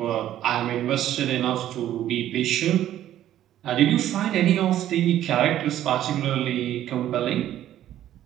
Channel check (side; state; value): left; quieter; 12.2 dB